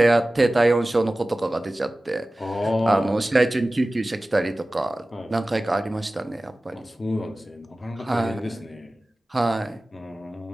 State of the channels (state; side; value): normal; both; correlation 0.97